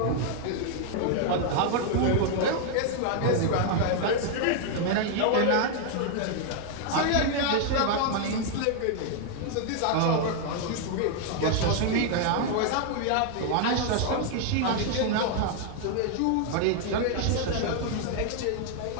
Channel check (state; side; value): different; both; correlation 0.00